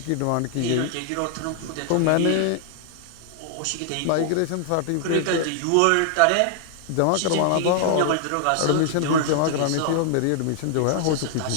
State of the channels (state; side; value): different; both; correlation -0.01